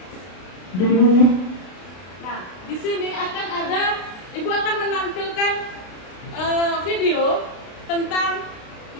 Nah, di sini akan ada, Ibu akan menampilkan video tentang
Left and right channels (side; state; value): right; late; 32 ms